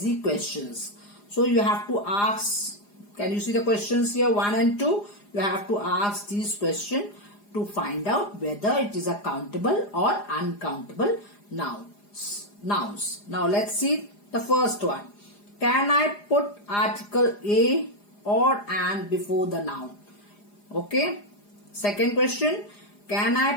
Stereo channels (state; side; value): late; right; 4.9 ms